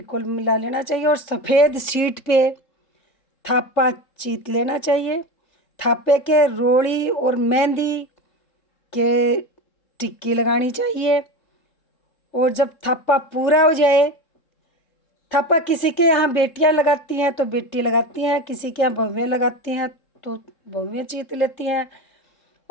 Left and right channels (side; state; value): right; late; 3.7 ms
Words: मिला लेना चाहिए और सफ़ेद शीट पे थापा चीत लेना चाहिए। थापे के रोड़ी और मेहंदी के टिक्की लगानी चाहिए। और जब थापा पूरा हो जाए, थापा किसी के यहाँ बेटियाँ लगाती हैं तो बेटी लगाती हैं, किसी के यहाँ बहुएँ लगाती हैं तो बहुएँ चीत लेती हैं।